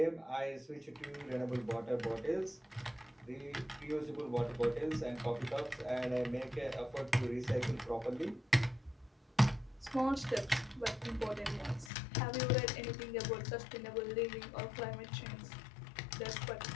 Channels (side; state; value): right; drops out; at 11.9 s